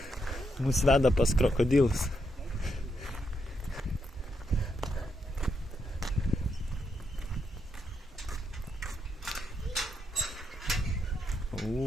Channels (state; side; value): normal; both; correlation 0.80